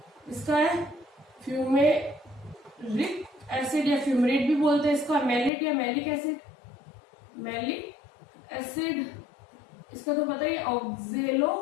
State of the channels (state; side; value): drops out; right; at 5.5 s